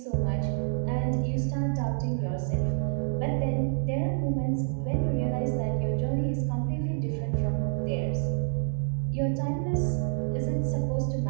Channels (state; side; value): silent; left; digital silence